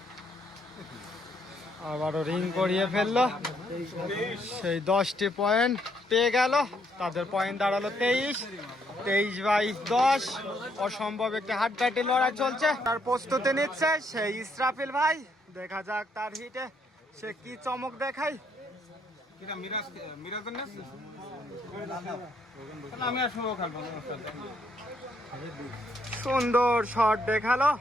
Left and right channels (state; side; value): normal; both; correlation 0.72